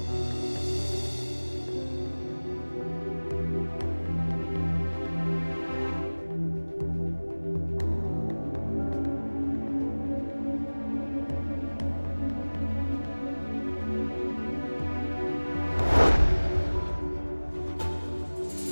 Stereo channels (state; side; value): inverted; both; correlation -1.00